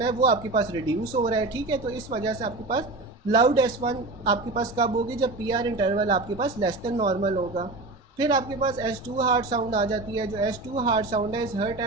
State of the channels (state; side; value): quieter; left; 3.1 dB